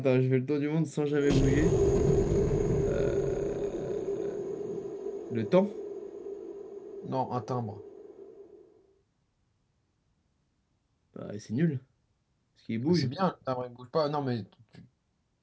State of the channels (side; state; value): both; identical; correlation 1.00